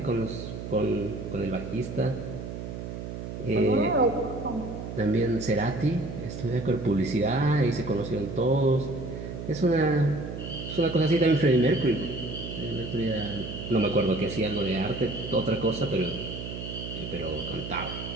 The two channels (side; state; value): right; noise; hum, 7 dB below the sound